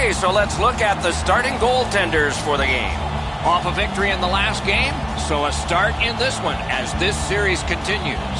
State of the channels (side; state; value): both; identical; correlation 1.00